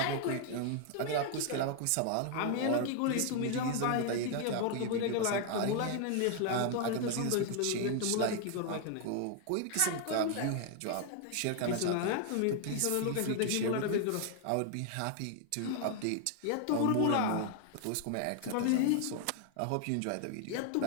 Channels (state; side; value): different; both; correlation 0.00